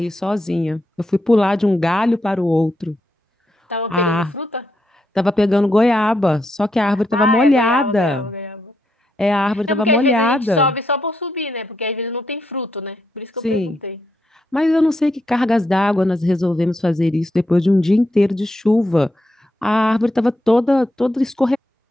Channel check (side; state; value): both; normal; correlation 0.81